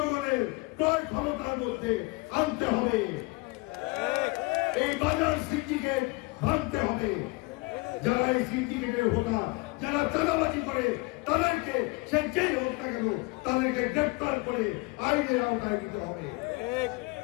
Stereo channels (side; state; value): right; quieter; 26.3 dB